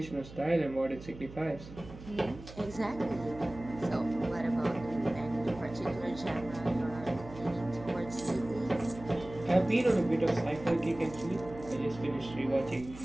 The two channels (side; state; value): right; noise; hum, 15 dB below the sound